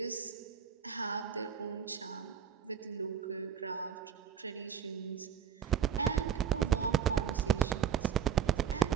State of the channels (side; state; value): left; quieter; 8.1 dB